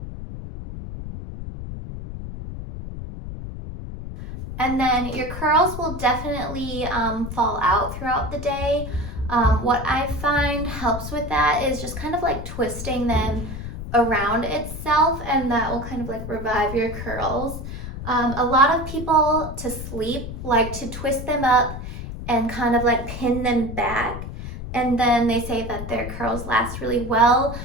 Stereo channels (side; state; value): left; noise; rumble, 8 dB below the sound